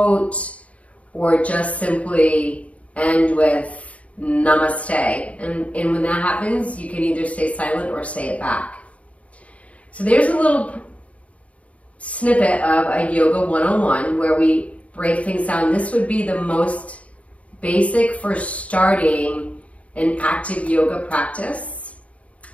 or just simply end with namaste. And when that happens, you can either stay silent or say it back. So there's a little snippet of a yoga 101 where we break things down. This would be the most basic for starting an active yoga practice.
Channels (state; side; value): late; right; 0.066 ms